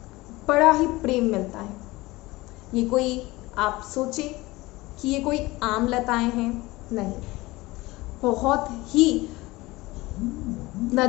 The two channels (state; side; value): quieter; right; 20.5 dB